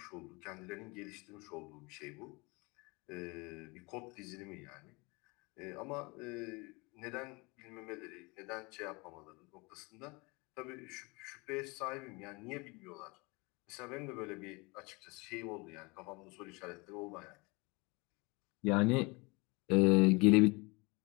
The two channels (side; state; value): right; quieter; 27.0 dB